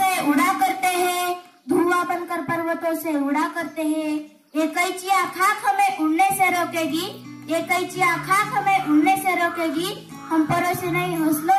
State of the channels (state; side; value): identical; both; correlation 1.00